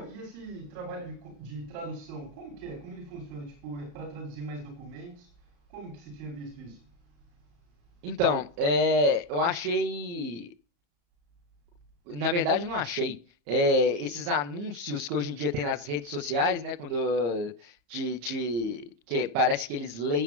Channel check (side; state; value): left; late; 34 ms